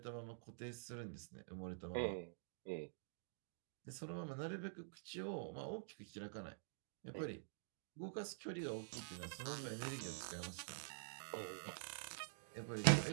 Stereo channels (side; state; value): left; silent; digital silence